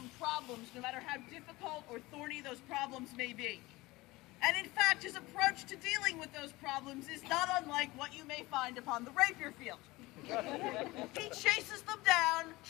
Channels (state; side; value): quieter; right; 20.7 dB